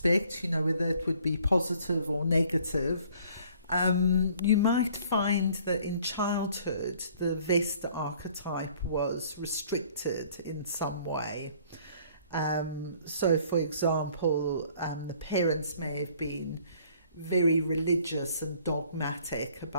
whether it would be positive or negative, you might find that in childhood the Vesta archetype was restricted in some way. So, for example, the parents may have been very religious and dogmatic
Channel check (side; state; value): both; inverted; correlation -0.58